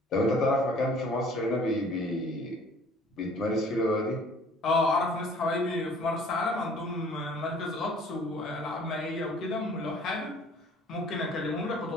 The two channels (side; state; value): both; normal; correlation 0.53